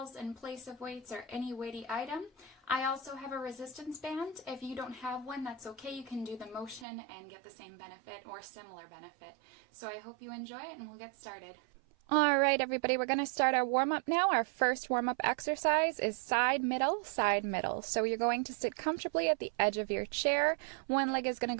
in place of weights or any weighty item. I also have a resistance band. If you don't have one, that's okay. You can do the motion and get the same benefit or similar benefit. So I hope you enjoy it, and we'll get started. All right, everybody, we're going to start our warm-up now. Our first warm-up exercise is side, middle, side, middle. So you're going to sit comfortably at the edge of your chair. One leg is going to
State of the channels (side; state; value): left; drops out; at 6.9 s